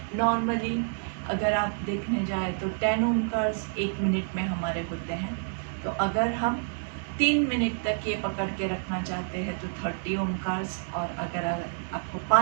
नॉर्मली अगर आप देखने जाए तो 10 ओमकार्स 1 मिनट में हमारे होते हैं। तो अगर हम 3 मिनट तक ये पकड़ के रखना चाहते हैं तो 30 ओमकार्स, और अगर आपको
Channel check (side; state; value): left; silent; digital silence